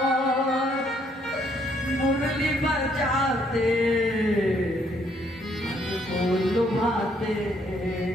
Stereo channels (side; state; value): both; normal; correlation 0.69